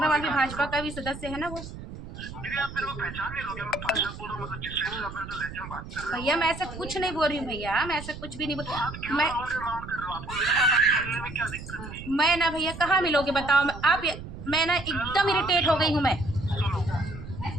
भी भाजपा का भी सदस्य है ना वो। दीदी आप मेरे को पहचान नहीं लोगे? मैं पार्षद बोल रहा हूँ, मतलब जिस टाइप से आप मेरे को लेके बात कर रहे हो। भैया मैं ऐसा कुछ नहीं बोल रही हूँ भैया, मैं ऐसा कुछ भी नहीं बोल। मैं राउंड कर रहे हो, आपको मेरे पास आके मिलने में क्या दिक्कत है? मैं ना भैया कहाँ मिलोगे बताओ। आप मैं ना एकदम इरिटेट हो गई हूँ।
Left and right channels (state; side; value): noise; right; rumble, 11 dB below the sound